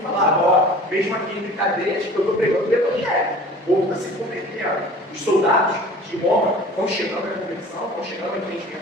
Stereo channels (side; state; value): both; normal; correlation 0.44